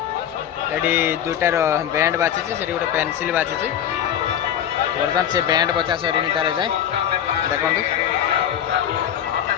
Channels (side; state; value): right; quieter; 9.9 dB